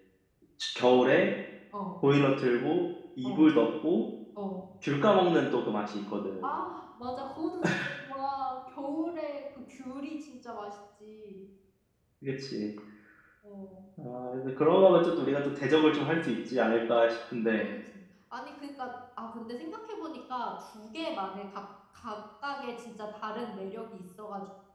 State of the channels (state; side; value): identical; both; correlation 1.00